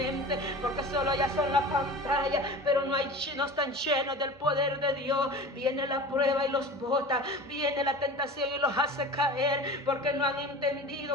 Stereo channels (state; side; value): noise; right; hum, 30 dB below the sound